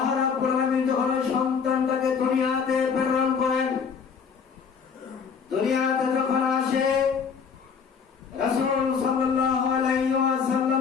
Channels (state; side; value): quieter; right; 6.2 dB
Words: রাব্বুল আলামিন যখন সন্তানটাকে দুনিয়াতে প্রেরণ করেন, দুনিয়াতে যখন আসে, রাসূল সাল্লাল্লাহু আলাইহি